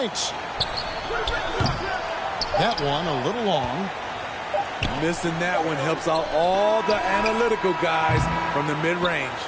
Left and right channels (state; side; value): identical; both; correlation 1.00